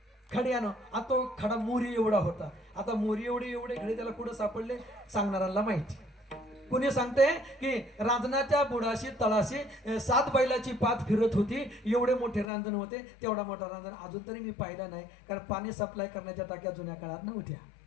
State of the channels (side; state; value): right; drops out; at 12.5 s